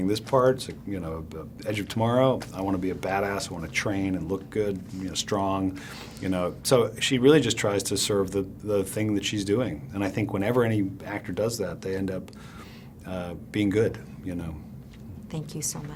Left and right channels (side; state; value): both; identical; correlation 1.00